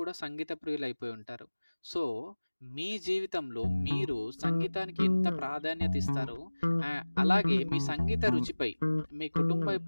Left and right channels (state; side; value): inverted; both; correlation -1.00